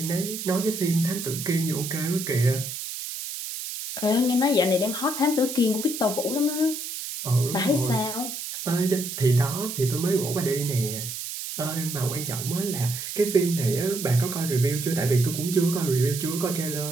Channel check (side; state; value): right; noise; hiss, 7 dB below the sound